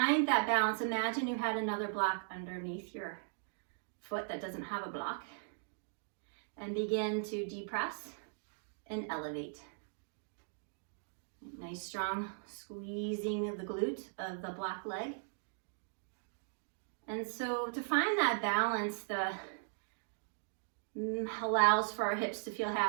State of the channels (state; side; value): silent; left; digital silence